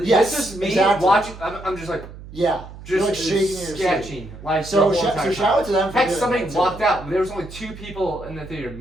Yes, this is me exactly. watching. I'm just like. Yeah. Just You're like shaking in your sketching. seat. Like So the whole entire shout out to them for Heck, doing somebody that, too. walked out. There was only 2 people in the theater,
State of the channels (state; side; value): noise; right; hum, 15 dB below the sound